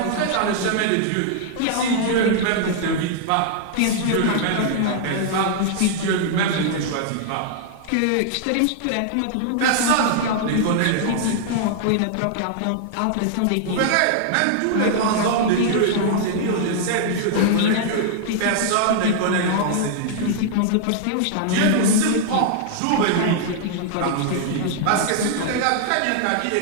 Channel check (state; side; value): different; both; correlation -0.01